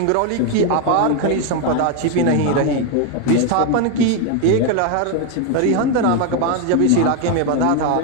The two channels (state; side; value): different; both; correlation 0.01